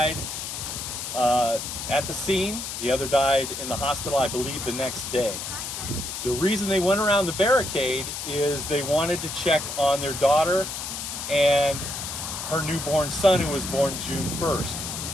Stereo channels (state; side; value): noise; left; hiss, 6 dB below the sound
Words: at the scene, the other died in the hospital, I believe, the next day. The reason they went around the barricade is they wanted to check on their daughter and her newborn son, who was born June 1st.